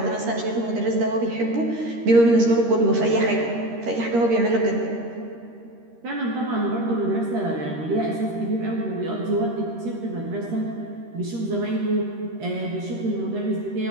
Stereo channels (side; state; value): left; late; 13 ms